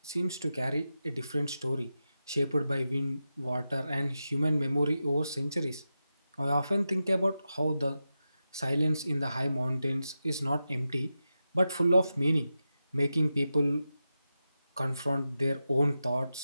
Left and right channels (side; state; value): both; inverted; correlation -0.91